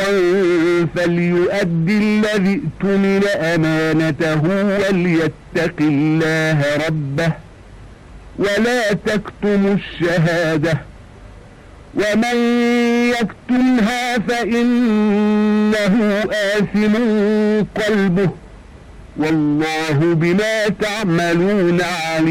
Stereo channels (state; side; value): identical; both; correlation 1.00